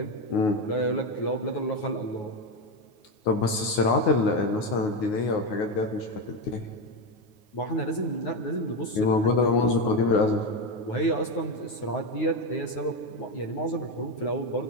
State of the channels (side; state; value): right; late; 9.5 ms